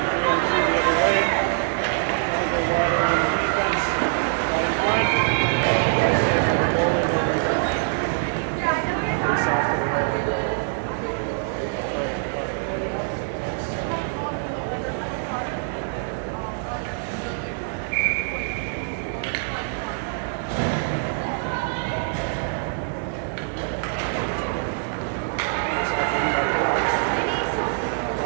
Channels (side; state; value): left; silent; 62 dB below the other